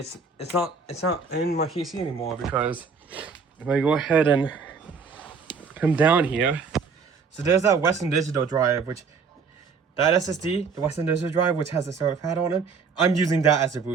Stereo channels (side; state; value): left; quieter; 5.3 dB